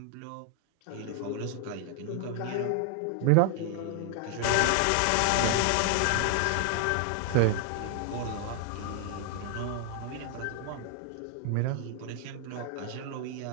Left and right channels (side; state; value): both; different; correlation 0.00